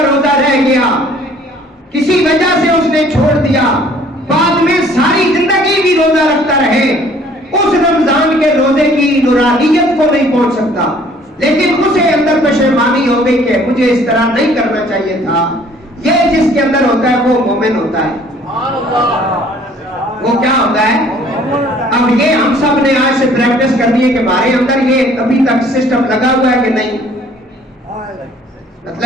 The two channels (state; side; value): normal; both; correlation 0.56